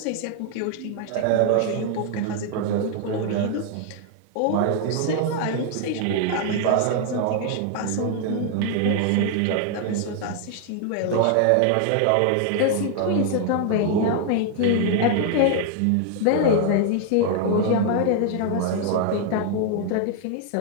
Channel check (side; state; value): both; different; correlation 0.00